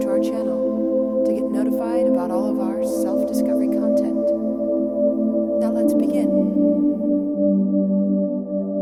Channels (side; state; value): both; identical; correlation 1.00